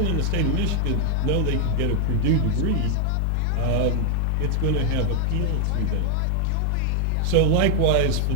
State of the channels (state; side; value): different; both; correlation 0.00